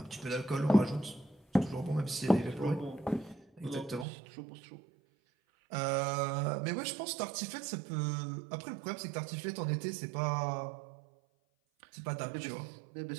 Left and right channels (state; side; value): drops out; left; at 4.0 s